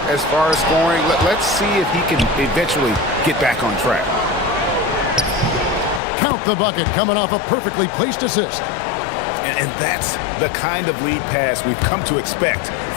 as far as scoring. Let's see if he can eventually get back on track. Count the bucket coming off a perfectly placed assist. And that's the kind of lead pass we've come to expect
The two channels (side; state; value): right; drops out; at 6.0 s